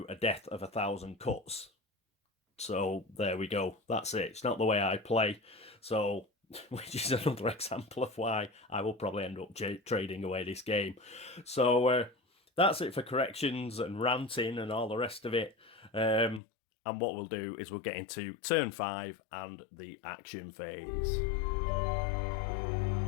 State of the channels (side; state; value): right; drops out; at 16.4 s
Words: a death of 1,000 cuts. So there we go. That's it. It's not the way I play. So which is another example of why I will probably end up trading away this game. So that's it for corrections and ranting and all the rest of it. And what we'll do is we'll get into turn 5 and the action phase.